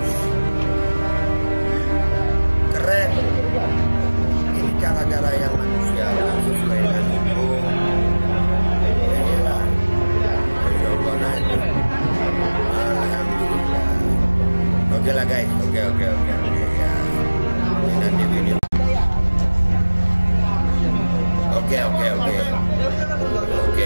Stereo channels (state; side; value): inverted; both; correlation -1.00